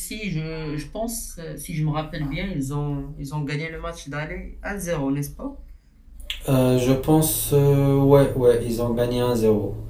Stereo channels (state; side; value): identical; both; correlation 1.00